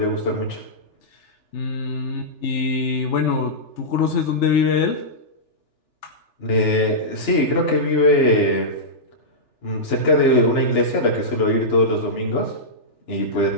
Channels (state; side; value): late; right; 3.4 ms